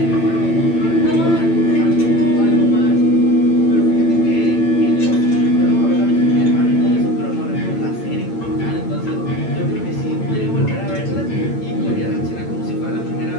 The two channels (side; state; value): right; late; 8.9 ms